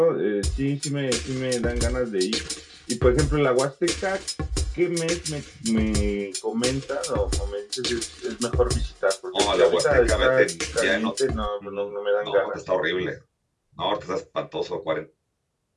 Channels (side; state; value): both; identical; correlation 1.00